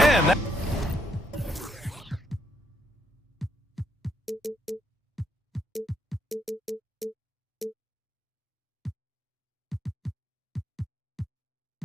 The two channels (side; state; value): both; normal; correlation 0.74